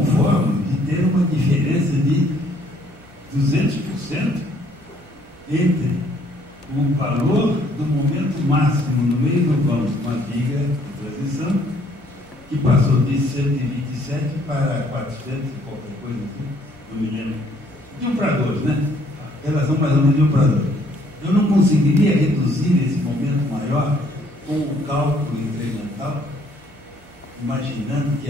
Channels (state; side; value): normal; both; correlation 0.64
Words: de ter uma diferença de 200% entre o valor do momento máximo no meio do vão com a viga de transição, que passou de 127 para 400 e qualquer coisa assim, não me lembro. De 1 para 2, né? Relação mais ou menos de 1 para 2. Eu não conseguiria reduzir esse momento maior com o cálculo incremental, imaginando que